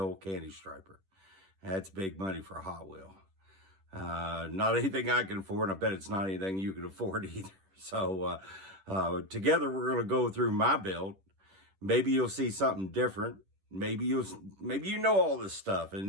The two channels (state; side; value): late; left; 10 ms